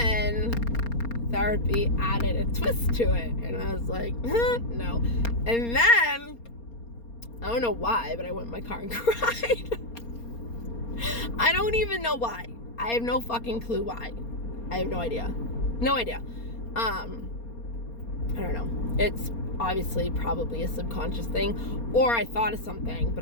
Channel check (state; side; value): late; right; 4.3 ms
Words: therapy added a twist to it, and I was like, no. And then, I don't know why, but I went in my car and cried. I don't even know why. I have no fucking clue why. I have no idea. No idea. I don't know. It's obviously probably a subconscious thing, or I thought of something, but